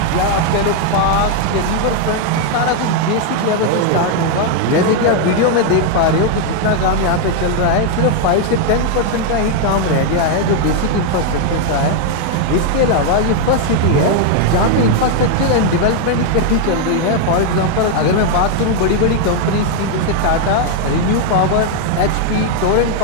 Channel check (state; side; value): different; both; correlation 0.00